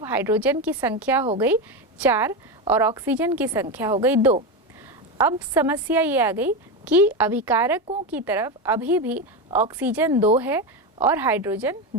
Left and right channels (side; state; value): both; normal; correlation 0.15